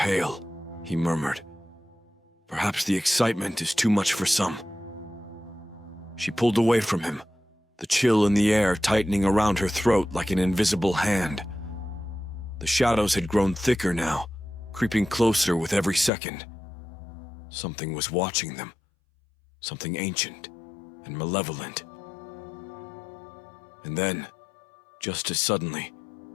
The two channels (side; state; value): right; drops out; at 16.1 s